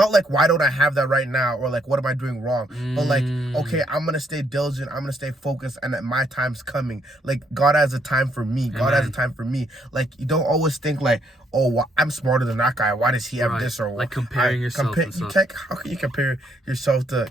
like, why don't I have that right now, or like what am I doing wrong? But like, okay, I'm gonna stay diligent. I'm gonna stay focused, and that my time's coming. Like God has a time for me. God has a time for me. Like you don't always think like, oh, well, I'm smarter than that guy. Why does he have this? Or like comparing yourself. How can you compare yourself to?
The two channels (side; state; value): both; normal; correlation 0.71